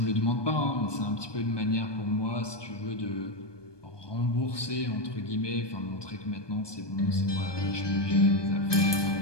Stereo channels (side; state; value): right; late; 1.2 ms